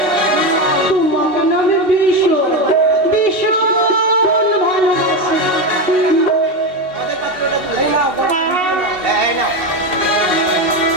তোমাকে না আমি ভীষণ ভীষণ ভালোবাসি। আমাদের পাত্রটা তুলে এই নাও বড় ভিডিও নাও। এই নাও।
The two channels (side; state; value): left; late; 2.7 ms